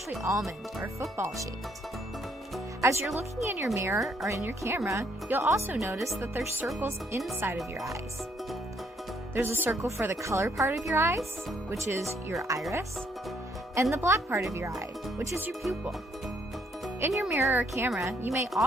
almond or football shaped. As you're looking in your mirror or in your camera, you'll also notice that there's circles inside of your eyes. There's a circle for the color part of your eyes, which is your iris, and the black part of your eye, which is your pupil. In your mirror or camera, you may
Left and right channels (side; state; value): both; normal; correlation 0.69